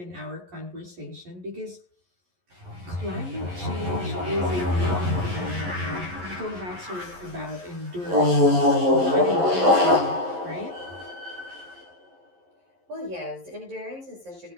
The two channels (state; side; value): late; left; 11 ms